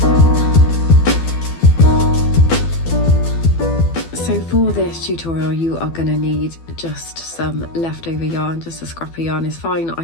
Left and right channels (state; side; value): late; right; 12 ms